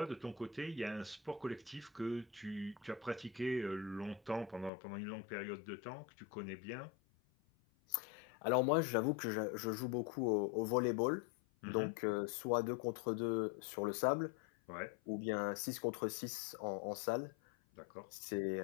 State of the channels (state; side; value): drops out; right; at 4.7 s